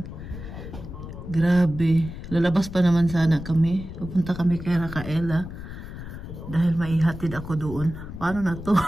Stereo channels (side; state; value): left; noise; rumble, 11 dB below the sound